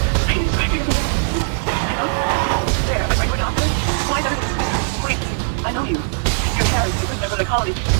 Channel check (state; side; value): silent; left; digital silence